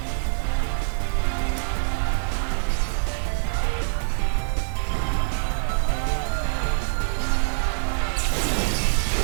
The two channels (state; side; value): silent; left; digital silence